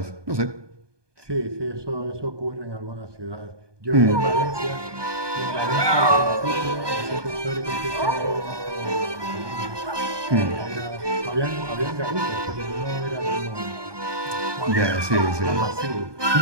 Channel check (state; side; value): late; left; 1.2 ms